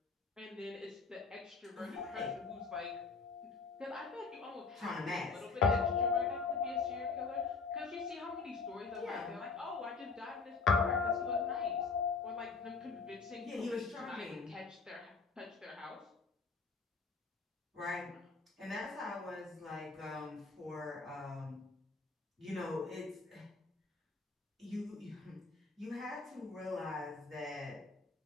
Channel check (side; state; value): right; quieter; 4.5 dB